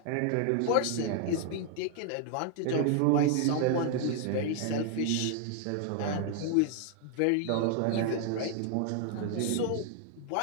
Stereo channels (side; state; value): both; different; correlation 0.00